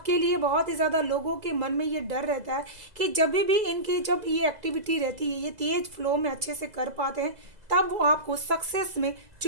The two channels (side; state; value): left; late; 2.0 ms